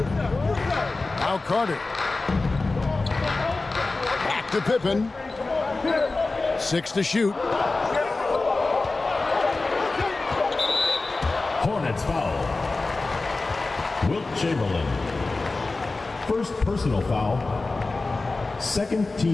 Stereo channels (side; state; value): right; quieter; 3.5 dB